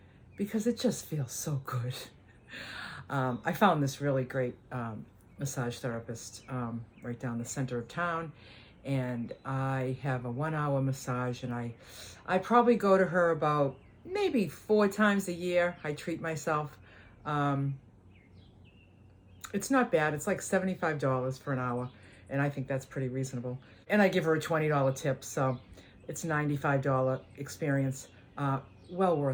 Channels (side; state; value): both; identical; correlation 1.00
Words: because it just feels so good. I found this really great massage therapist right down the center of town, and I have a 1 hour massage, and I probably go to her about maybe 4 times a year. I treat myself. It's not bad. It's like $75 for an hour, and I think that's pretty reasonable. And I give her a $20 tip, so it's a $95 experience. Well